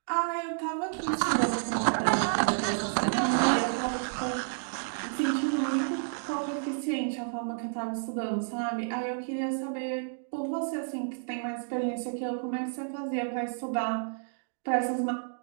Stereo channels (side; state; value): left; silent; digital silence